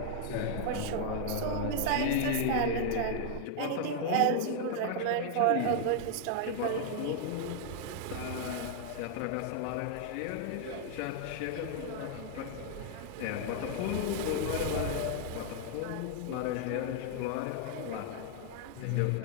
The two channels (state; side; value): different; both; correlation 0.00